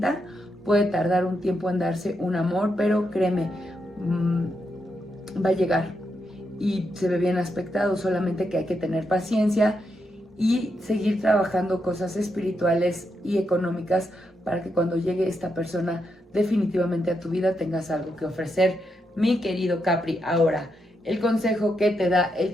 puede tardar un tiempo en darse un amor, pero créeme, va a llegar y se ve bien aspectado, solamente que hay que tener paciencia y seguir trabajando cosas espirituales y económicas para que cuando llegue esta persona definitivamente a tu vida tengas algo que ofrecer, mi querido Capri. Ahora, el consejo que te da el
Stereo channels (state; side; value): normal; both; correlation 0.82